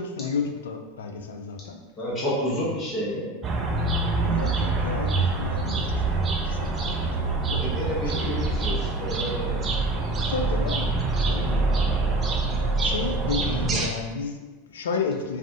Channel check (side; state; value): both; normal; correlation 0.36